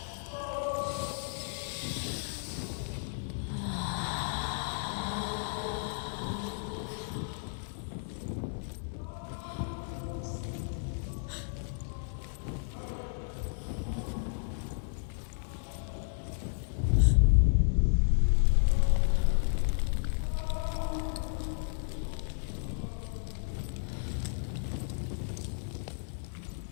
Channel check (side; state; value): right; silent; 56 dB below the other